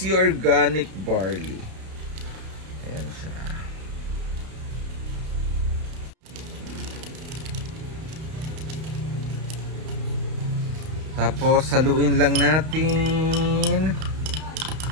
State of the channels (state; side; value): late; left; 32 ms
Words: Organic Barley. Ayan siya. Tapos, haluin lang natin.